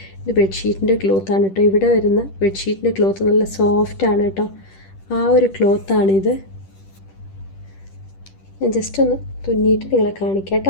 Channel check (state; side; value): late; right; 10 ms